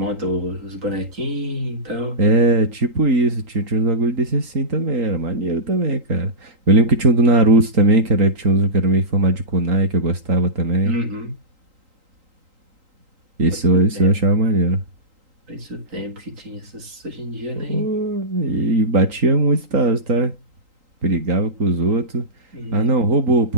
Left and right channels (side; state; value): left; late; 3.8 ms